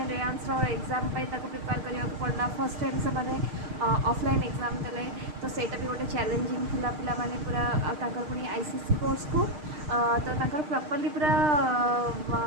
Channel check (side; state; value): left; late; 6.5 ms